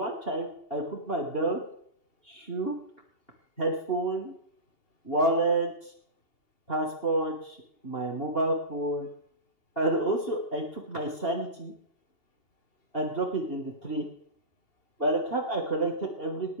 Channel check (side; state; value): right; late; 2.8 ms